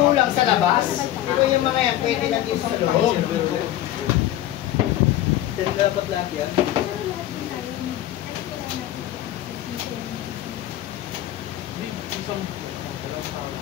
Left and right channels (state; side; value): quieter; right; 13.4 dB